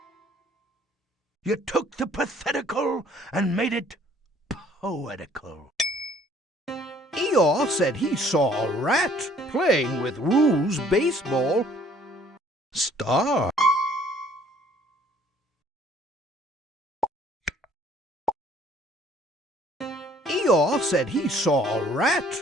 You took the pathetical and made it poetical. Eeyore said he saw a rat playing with Roo's baseball star. Eeyore said he saw a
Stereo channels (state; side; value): normal; both; correlation 0.58